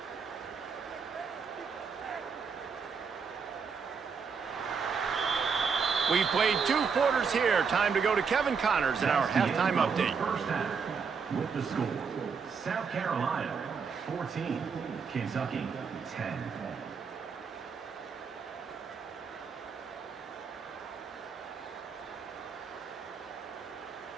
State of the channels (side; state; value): left; quieter; 5.8 dB